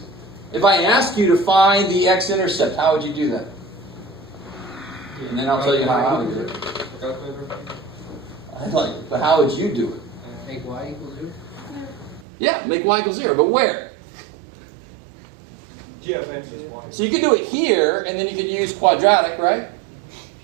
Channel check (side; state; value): left; drops out; at 12.2 s